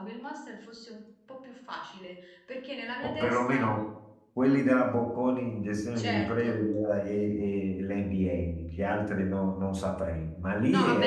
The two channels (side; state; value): both; identical; correlation 1.00